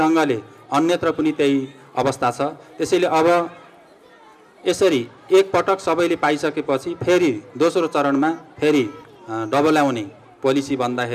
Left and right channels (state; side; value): identical; both; correlation 1.00